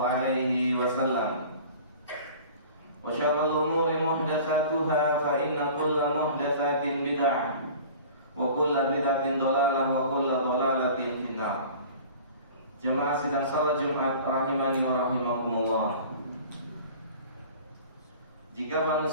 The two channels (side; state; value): both; inverted; correlation -0.43